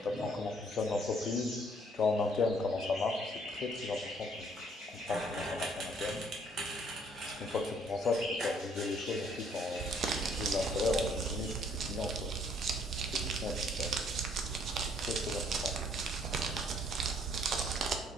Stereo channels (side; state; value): both; normal; correlation 0.63